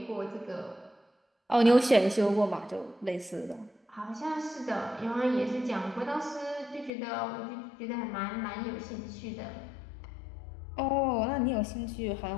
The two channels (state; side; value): drops out; right; at 6.9 s